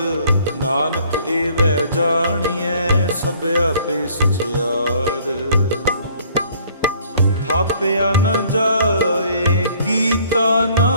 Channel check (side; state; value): both; inverted; correlation -0.59